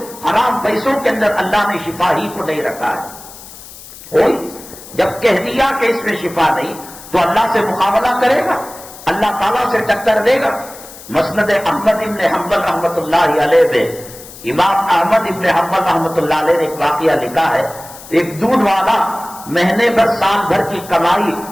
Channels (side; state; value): left; noise; hiss, 17 dB below the sound